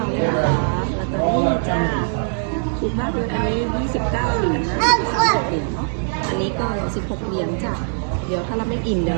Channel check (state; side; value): silent; left; 65 dB below the other